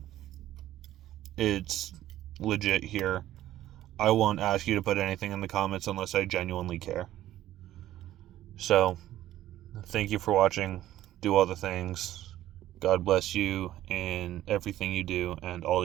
it's legit here. I won't ask you to put anything in the comments unless I genuinely care. So, thank you for watching. Do all the things. God bless you in everything you do and all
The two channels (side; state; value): left; quieter; 13.6 dB